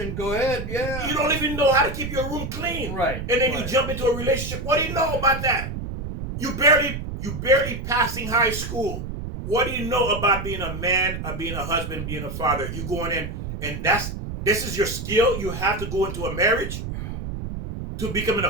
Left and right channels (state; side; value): noise; right; rumble, 6 dB below the sound